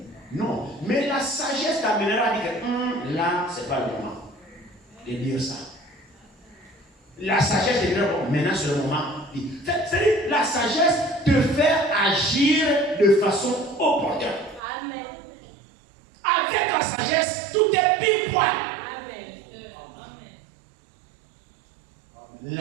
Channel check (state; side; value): drops out; left; at 14.6 s